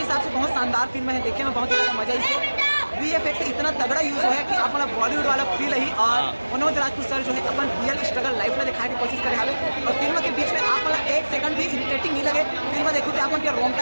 हिसाब से बहुत शानदार फिल्म है, देखने में बहुत ज़्यादा मजा इसे। VFX इतना तगड़ा यूज हुआ है कि आप बॉलीवुड वाला फील ही, और मनोज राजपूत सर जो है अपन रियल स्ट्रगल लाइफ में दिखाने की कोशिश करे हाले। और फिल्म के बीच में आप एक सेकंड भी इरिटेटिंग नहीं लगे। फिल्म देखो तो आप उनके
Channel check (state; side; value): inverted; both; correlation -1.00